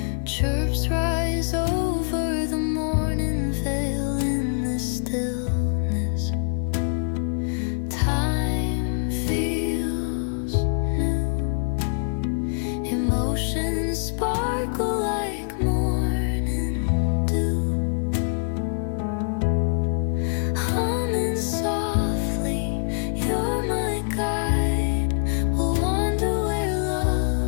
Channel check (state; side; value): silent; right; digital silence